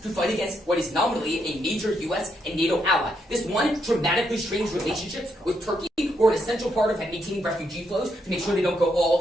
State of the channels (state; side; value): normal; both; correlation 0.78